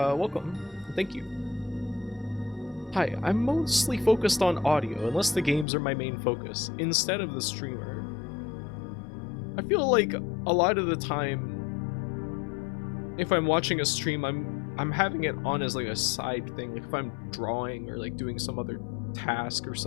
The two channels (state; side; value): drops out; right; at 5.7 s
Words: Welcome. Thank you. Hi, I'm mostly focused on audio, unless the games are my main focus, instead of the streamer. I feel like a lot of the time, if I'm watching a stream, I'm having it on as like a side thing. Like if I'm drawing or like doing some other task or